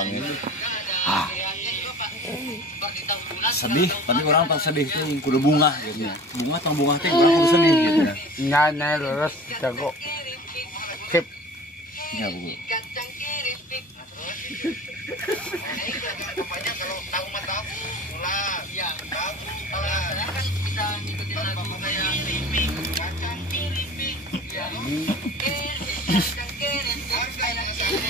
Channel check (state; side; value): normal; both; correlation 0.40